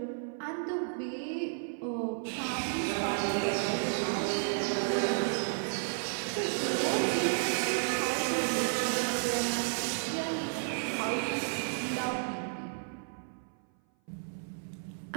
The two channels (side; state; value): left; silent; 56 dB below the other